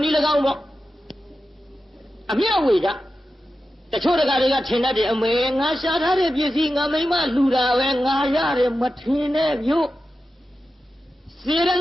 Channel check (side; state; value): both; normal; correlation 0.92